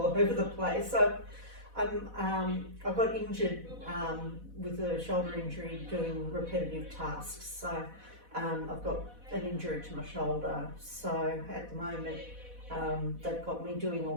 over the place. I got injured with a shoulder injury doing repetitive tasks. So I've got an injury to my shoulder. So at the moment they've got me doing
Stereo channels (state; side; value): late; left; 4.1 ms